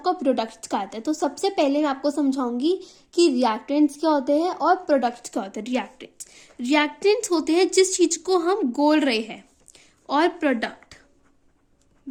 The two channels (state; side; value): identical; both; correlation 1.00